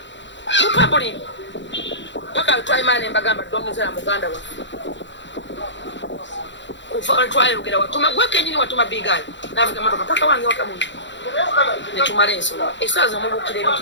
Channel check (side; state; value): right; late; 0.53 ms